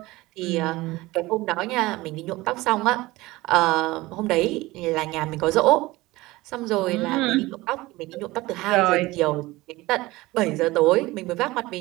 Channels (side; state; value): left; quieter; 19.7 dB